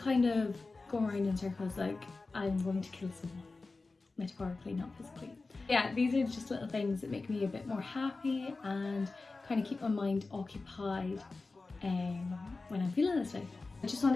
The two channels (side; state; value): right; quieter; 3.7 dB